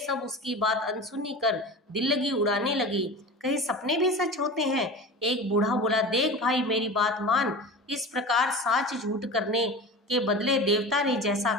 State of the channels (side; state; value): both; normal; correlation 0.32